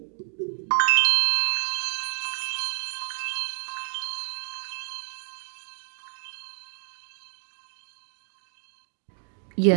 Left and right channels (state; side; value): silent; left; 59 dB below the other